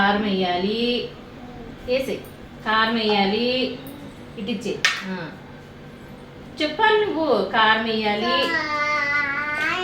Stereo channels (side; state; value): both; identical; correlation 1.00